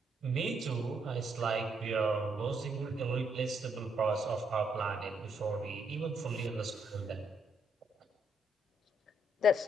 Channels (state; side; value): normal; both; correlation 0.74